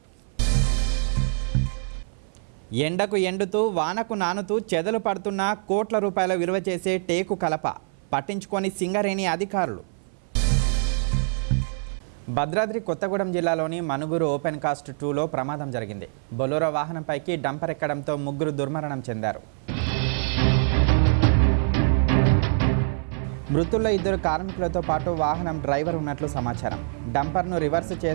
ఎండకు ఎండుతూ వానకు నానుతూ చెదలు పడుతున్న కోట్ల రూపాయల విలువ చేసే టేకు కలప పట్టించుకొని సింగరేణి అధికారులు. భద్రాద్రి కొత్తగూడెం జిల్లాలోని మనుగురు ఓపెన్ కాస్ట్ 2లో ప్రమాదం జరిగింది. బొలెరో వాహనంపైకి డంపర్ ఎక్కడంతో ముగ్గురు దుర్మరణం చెందారు. మృతుల్లో 2 కార్మికులతో పాటు వాహనం డ్రైవర్ ఉన్నట్లు సమాచారం. డంపర్ను రివర్స్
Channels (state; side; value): silent; left; 56 dB below the other